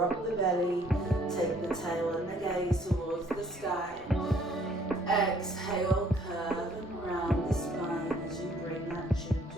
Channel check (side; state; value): both; normal; correlation 0.61